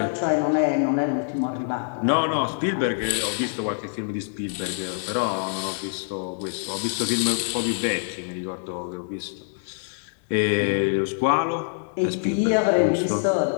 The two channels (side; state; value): right; silent; digital silence